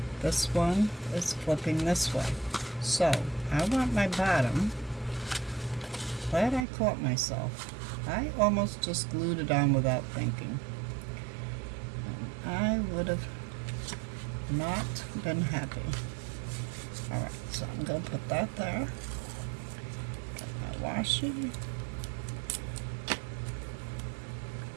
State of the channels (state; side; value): drops out; left; at 6.7 s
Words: This one is flipping this way. So, I want my bottom. Glad I caught myself. I almost just glued it on without thinking. And I would have not been happy. Alright, so I'm going to put that there. Get my washi.